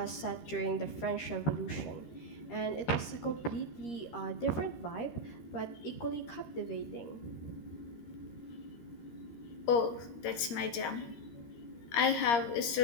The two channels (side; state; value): right; late; 13 ms